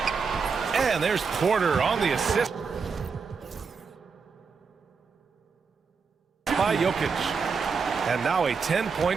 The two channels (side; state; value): left; quieter; 5.4 dB